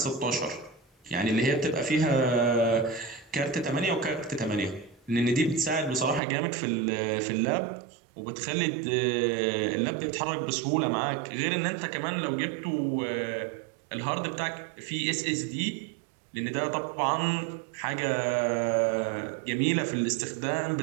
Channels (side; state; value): left; drops out; at 6.2 s